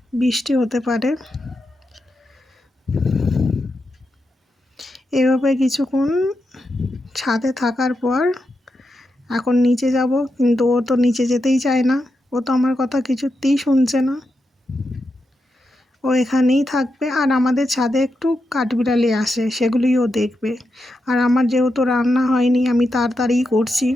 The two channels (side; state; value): both; normal; correlation 0.86